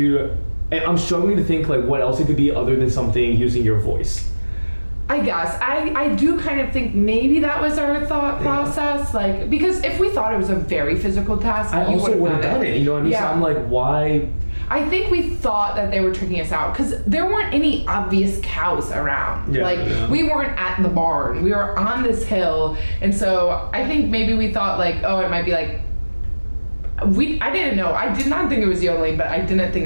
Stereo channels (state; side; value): inverted; both; correlation -1.00